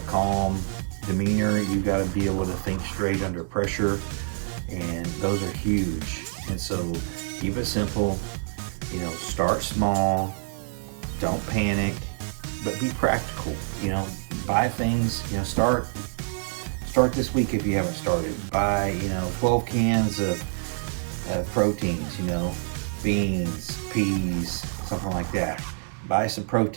calm demeanor. You got to be able to think straight under pressure. And those are huge. And so keep it simple, start small, don't panic, but be practical. You know, buy things. You know, start this week if you haven't started. Buy 12 cans of proteins. You know, beans, peas, something like that. Buy some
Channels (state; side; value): silent; left; 59 dB below the other